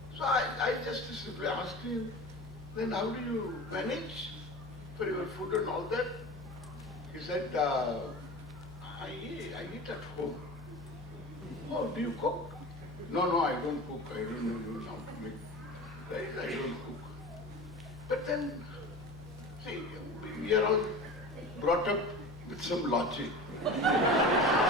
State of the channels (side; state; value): left; noise; hum, 16 dB below the sound